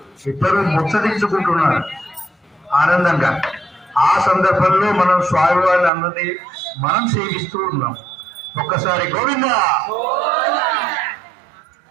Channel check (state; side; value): drops out; left; at 5.9 s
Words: ఇద్దరు ముచ్చరించుకుంటున్నారు ఆనందంగా. ఆ సందర్భంలో మనం స్వామివారిని అందరినీ మనం సేవిస్తూ ఉన్నాం. ఒక్కసారి గోవిందా.